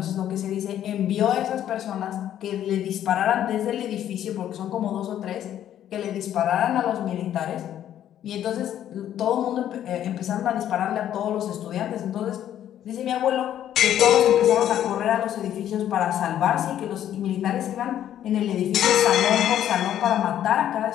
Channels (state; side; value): quieter; right; 11.0 dB